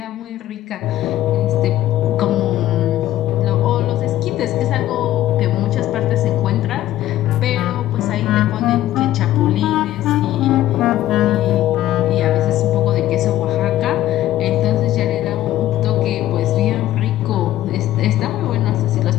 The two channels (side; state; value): right; quieter; 13.9 dB